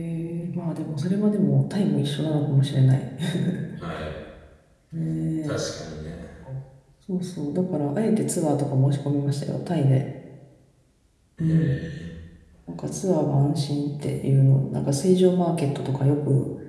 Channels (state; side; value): identical; both; correlation 1.00